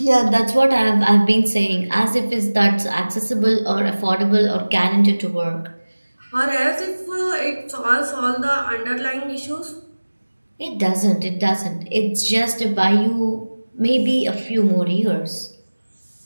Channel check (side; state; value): both; inverted; correlation -1.00